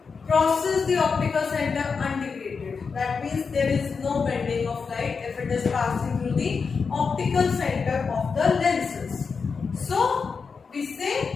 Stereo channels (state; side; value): quieter; right; 5.3 dB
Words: crosses the optical center undegraded. That means there is no bending of light if it is passing through the optical center of the lenses. So we